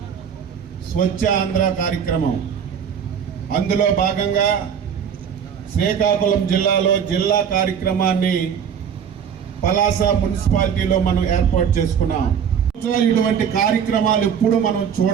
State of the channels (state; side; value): quieter; left; 7.8 dB